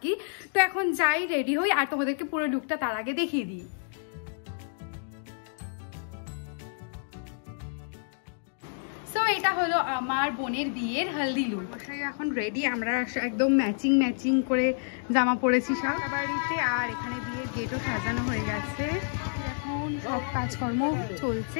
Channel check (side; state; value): right; silent; digital silence